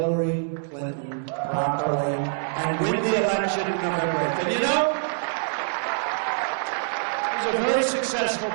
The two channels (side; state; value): left; silent; digital silence